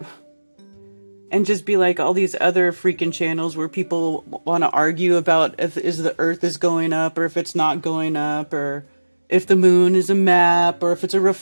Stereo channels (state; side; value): inverted; both; correlation -1.00